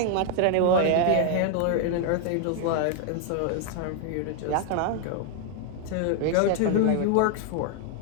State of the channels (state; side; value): different; both; correlation 0.00